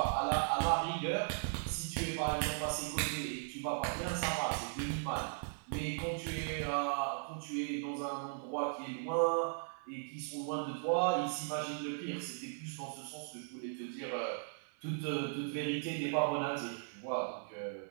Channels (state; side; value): silent; left; 53 dB below the other